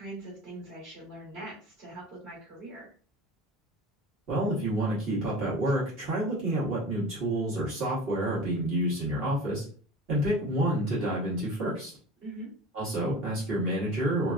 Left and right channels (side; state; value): both; normal; correlation 0.36